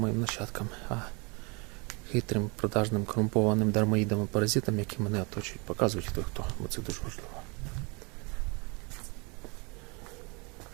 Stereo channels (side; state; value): left; quieter; 30.3 dB